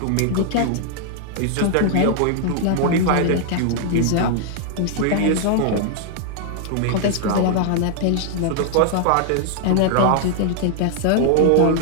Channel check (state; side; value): different; both; correlation -0.01